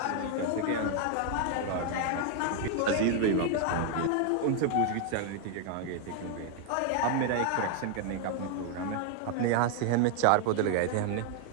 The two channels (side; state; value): both; different; correlation 0.00